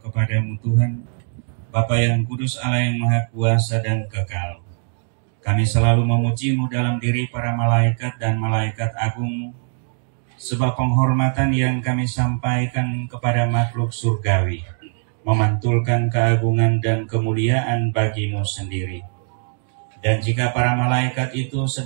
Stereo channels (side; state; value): left; silent; digital silence